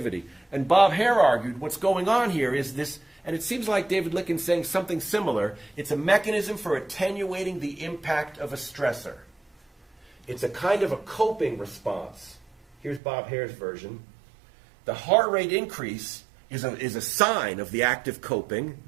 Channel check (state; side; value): drops out; left; at 13.0 s